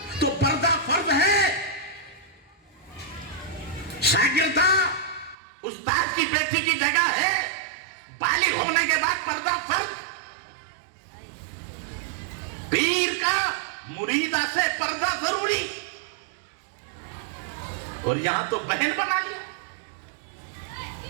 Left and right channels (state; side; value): drops out; left; at 5.4 s